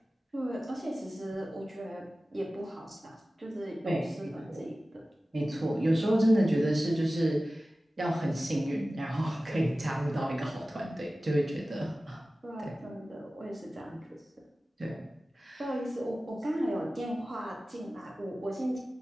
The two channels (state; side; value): normal; both; correlation 0.96